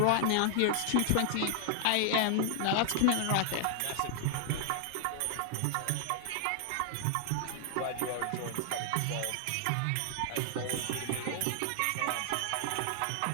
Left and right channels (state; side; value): different; both; correlation 0.00